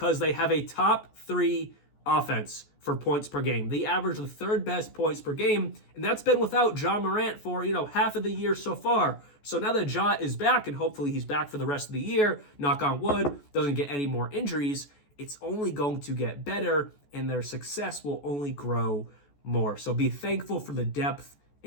they have a top 3 offense for points per game. They average the 3rd best points per game, and that's been without Ja Morant for, half of the year so far. So now that Ja is back, and hopefully he's back for the rest of the year, knock on wood, doesn't get any more injuries, it's only going to get better, and their success will only grow more. So be thankful for the depth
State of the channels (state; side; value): late; right; 14 ms